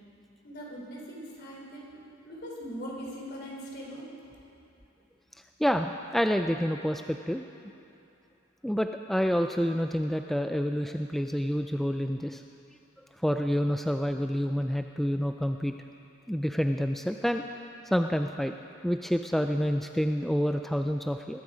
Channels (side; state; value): both; normal; correlation 0.95